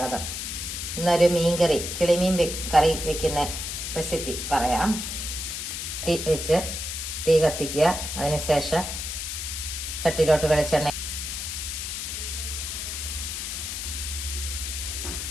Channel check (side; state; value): left; noise; hiss, 5 dB below the sound